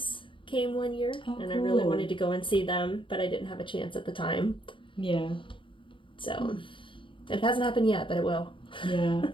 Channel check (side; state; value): right; late; 0.25 ms